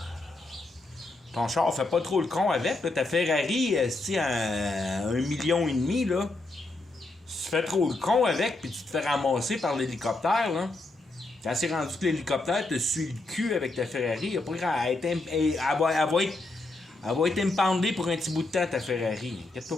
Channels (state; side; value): quieter; right; 3.0 dB